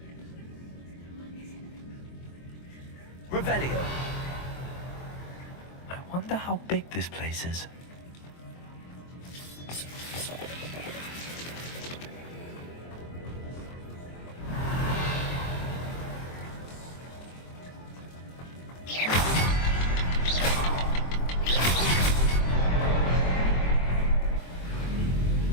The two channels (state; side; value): late; right; 23 ms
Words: Revelio. I wonder how big this place is.